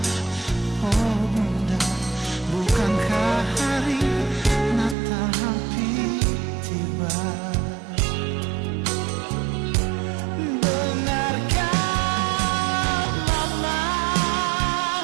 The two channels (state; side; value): drops out; left; at 5.0 s